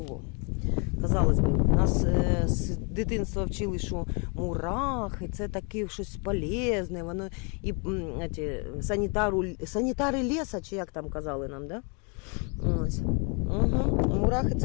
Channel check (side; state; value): right; quieter; 34.6 dB